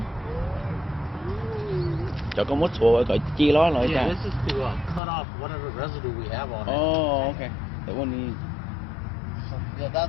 Cho con mút xuống rồi chia nó lại ra. This is to cut off whatever residue we have on it. Oh, okay. That one needs. Yeah,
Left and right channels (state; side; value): drops out; right; at 5.0 s